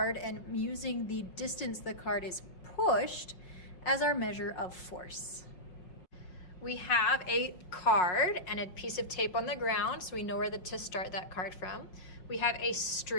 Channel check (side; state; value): right; late; 5.5 ms